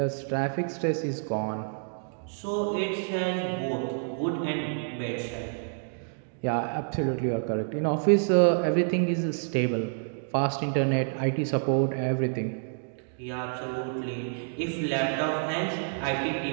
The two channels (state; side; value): silent; left; digital silence